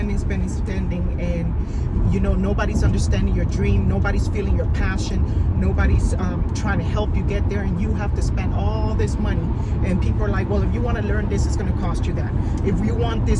and nobody's understanding your dream, nobody's feeling your passion, nobody's trying to help you get there, and you have to spend all this money. And people are like, well, if you want to learn this, it's going to cost you that. If you want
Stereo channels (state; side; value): identical; both; correlation 1.00